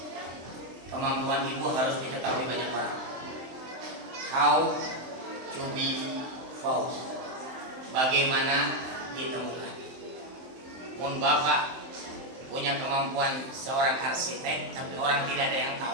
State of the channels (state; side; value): late; left; 23 ms